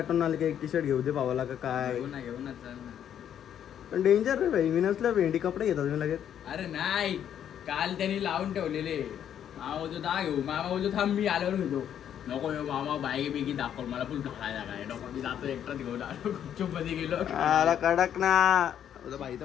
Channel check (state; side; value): quieter; right; 9.6 dB